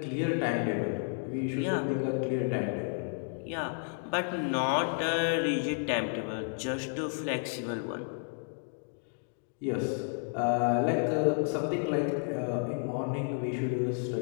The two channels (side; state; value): right; silent; 57 dB below the other